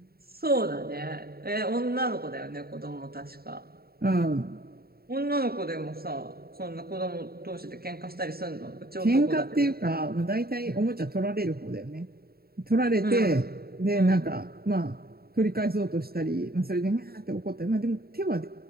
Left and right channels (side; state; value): left; late; 0.45 ms